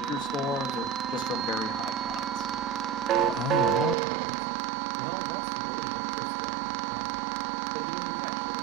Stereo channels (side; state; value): left; drops out; at 4.0 s